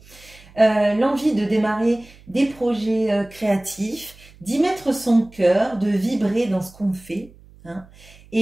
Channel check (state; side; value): noise; right; hum, 24 dB below the sound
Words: l'envie de démarrer des projets créatifs, d'y mettre son cœur, de vibrer dans ce qu'on fait. Hein.